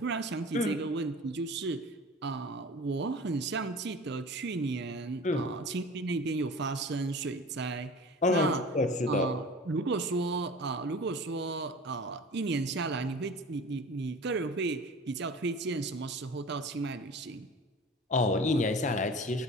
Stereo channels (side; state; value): both; normal; correlation 0.39